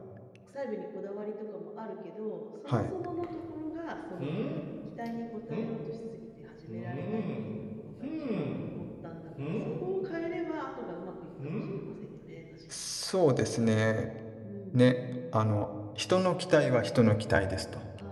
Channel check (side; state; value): both; identical; correlation 1.00